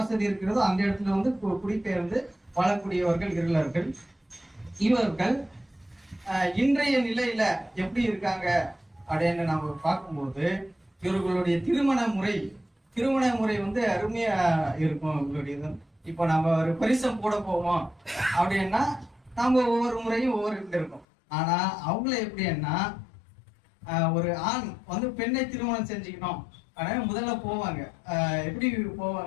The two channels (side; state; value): right; drops out; at 21.1 s